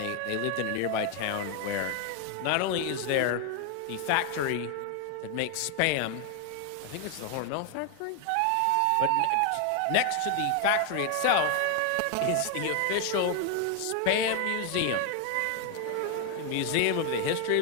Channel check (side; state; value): both; different; correlation 0.01